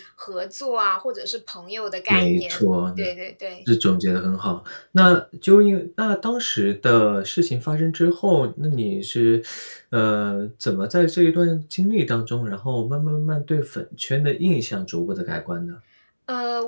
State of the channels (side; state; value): both; inverted; correlation -1.00